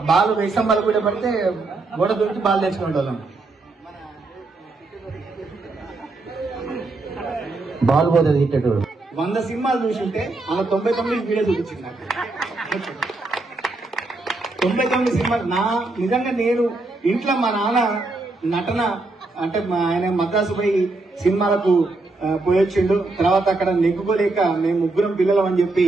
బాల్ వేసాం, బాల్ కూడా పడితే గోడ దొరికి బాల్ తెచ్చుకునే వాళ్ళం. బాల్ పోతుంది హిట్టెడ్. 100 సినిమాలు చూసుంటే అలా 99 వీడియో చూపించింది నాకు. 99 సినిమాలు నిజంగా నేను ఇంట్లో మా నాన్న నటన అంటే ఆయన మద్రాసు పోయి సినిమాలకు పోయొచ్చిండు. తర్వాత అక్కడ నెగ్గుకోలేక మేము 3 పిల్లలం అని చెప్పి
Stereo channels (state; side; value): quieter; left; 3.3 dB